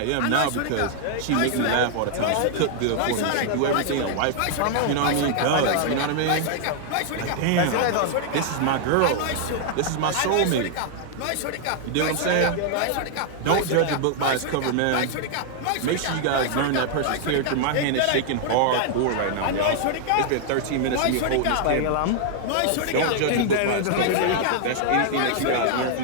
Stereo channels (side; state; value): both; different; correlation 0.00